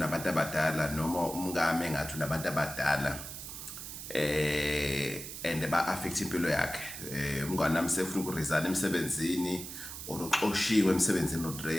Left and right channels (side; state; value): right; noise; hiss, 9 dB below the sound